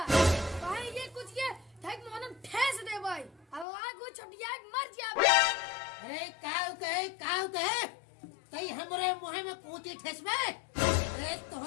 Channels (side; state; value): right; drops out; at 3.7 s